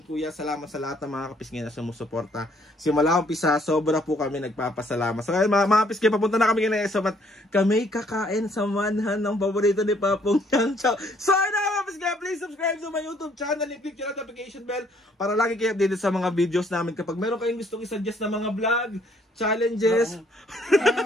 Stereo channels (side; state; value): both; normal; correlation 0.65